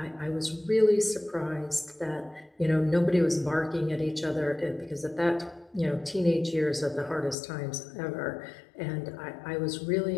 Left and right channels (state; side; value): drops out; right; at 7.4 s